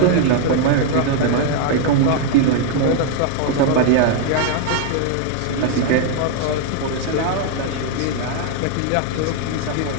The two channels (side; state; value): both; different; correlation 0.00